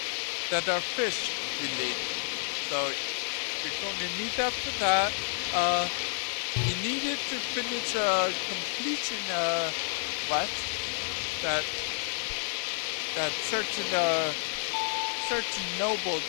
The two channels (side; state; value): right; silent; digital silence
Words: that are fish related. So you're going to need that for that. You need it to finish a completion quest that certain nobles